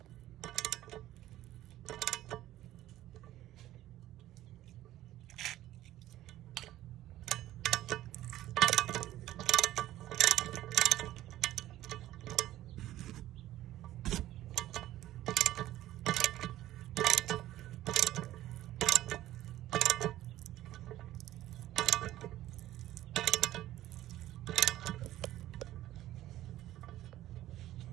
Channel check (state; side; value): quieter; left; 14.3 dB